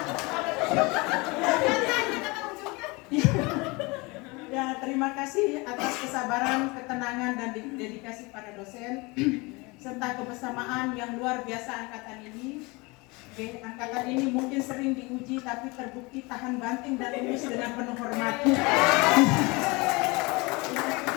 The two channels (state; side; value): quieter; right; 25.7 dB